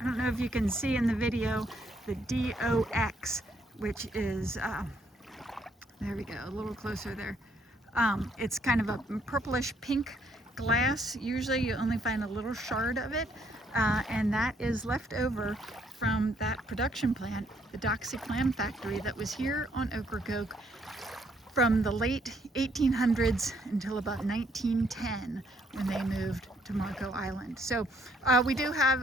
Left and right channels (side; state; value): both; normal; correlation 0.69